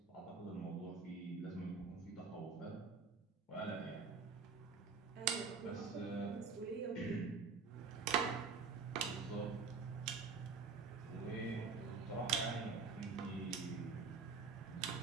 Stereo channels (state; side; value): quieter; left; 5.0 dB